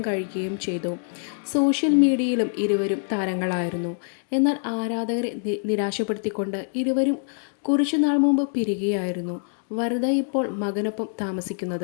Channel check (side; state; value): right; silent; digital silence